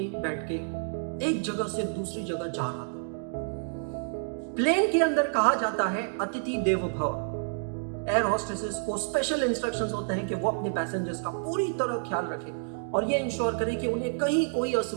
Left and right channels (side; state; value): left; silent; digital silence